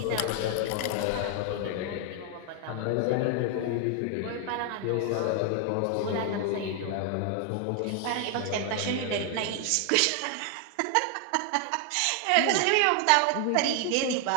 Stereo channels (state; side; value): different; both; correlation 0.00